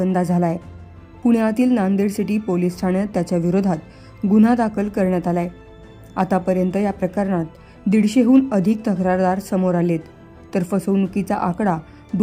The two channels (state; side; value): identical; both; correlation 1.00